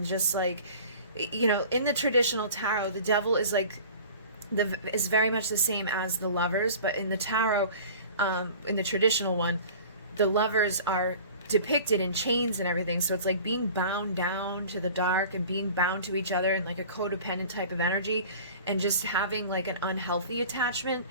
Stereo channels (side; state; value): both; inverted; correlation -0.42